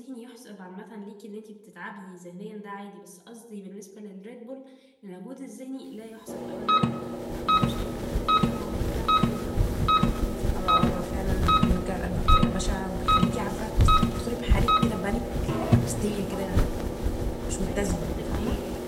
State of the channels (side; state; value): both; identical; correlation 1.00